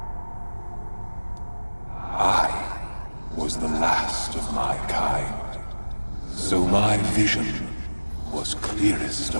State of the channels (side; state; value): both; inverted; correlation -1.00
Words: I was the last of my kind, so my vision was clearest